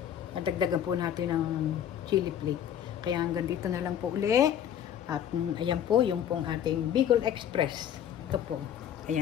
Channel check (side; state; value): right; quieter; 9.8 dB